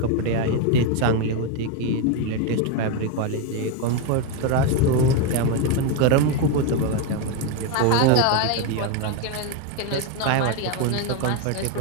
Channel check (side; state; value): both; different; correlation 0.02